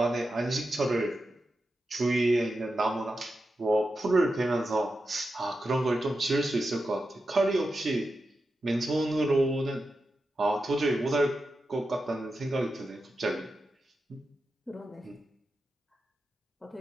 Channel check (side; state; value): both; normal; correlation 0.90